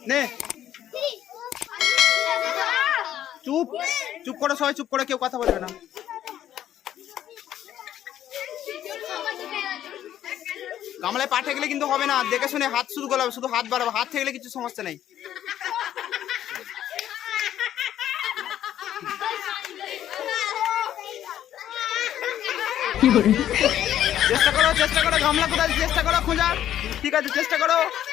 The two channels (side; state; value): right; quieter; 11.4 dB